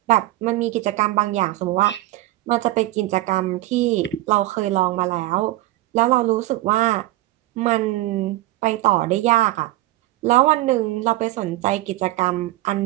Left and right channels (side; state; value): left; quieter; 17.0 dB